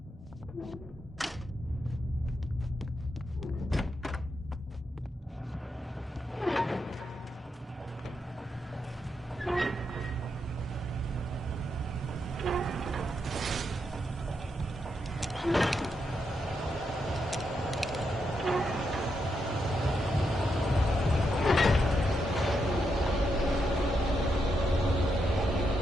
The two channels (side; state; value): both; normal; correlation 0.82